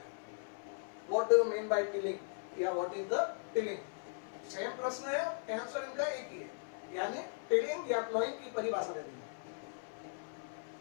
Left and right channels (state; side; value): silent; right; 52 dB below the other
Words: What do you mean by tilling या what is the tilling, same प्रश्न है, आंसर इनका एक ही है, यानी टिलिंग या प्लोइंग की परिभाषा दे दी।